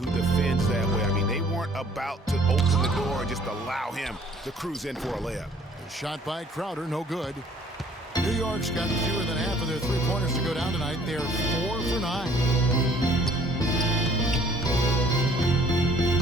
defends that way. I mean, they weren't about to open the door and just allow him to cruise in for a layup. Shot by Crowder, no good. New York's got fewer than half of their 3-pointers to go down tonight. They're 4 for 9.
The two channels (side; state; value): both; normal; correlation 0.58